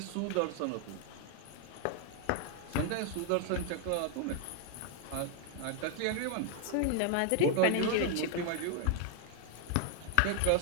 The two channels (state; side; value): different; both; correlation 0.00